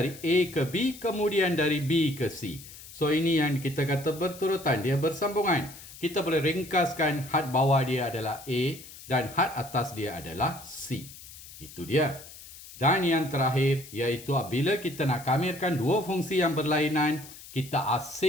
A ke B, kemudian dari B ke C. So ini yang kita kata berturutan, dia bersambungan. Kita boleh ringkaskan had bawah dia adalah A dan had atas dia adalah C. Itu dia. Dan yang terakhir, iaitu apabila kita nak kamirkan dua fungsi yang berlainan, kita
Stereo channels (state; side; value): noise; left; hiss, 17 dB below the sound